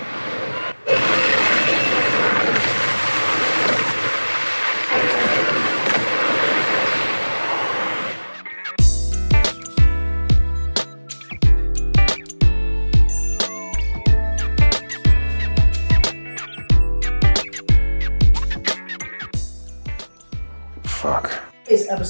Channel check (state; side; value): inverted; both; correlation -1.00